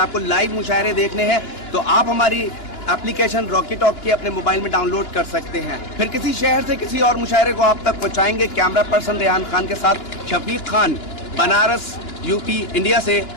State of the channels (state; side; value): late; right; 2.9 ms